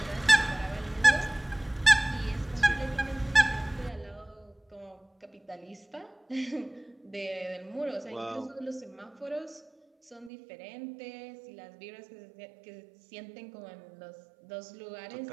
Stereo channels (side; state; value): left; drops out; at 10.3 s